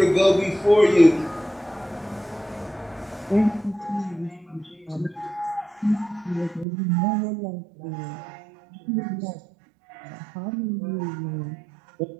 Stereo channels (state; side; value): drops out; left; at 6.7 s